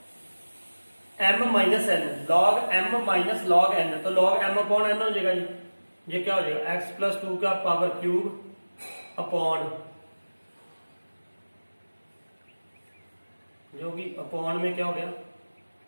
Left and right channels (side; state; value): both; inverted; correlation -1.00